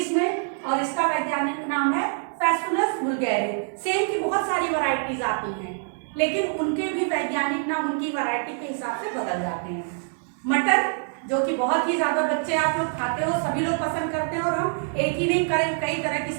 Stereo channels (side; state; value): left; silent; 59 dB below the other